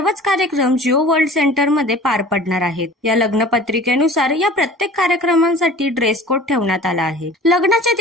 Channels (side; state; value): both; normal; correlation 0.44